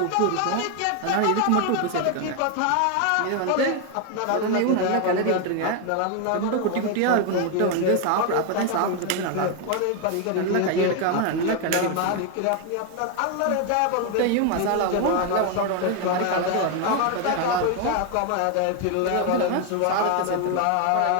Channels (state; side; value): different; both; correlation 0.01